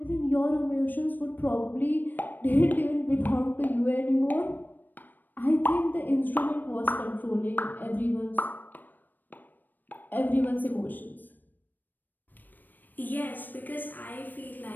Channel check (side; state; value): right; late; 0.090 ms